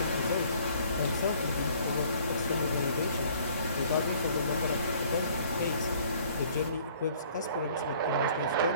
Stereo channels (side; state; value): both; inverted; correlation -0.57